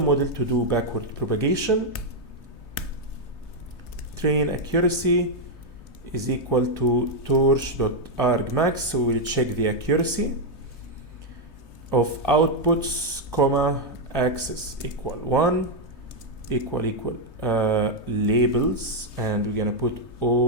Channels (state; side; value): late; right; 3.3 ms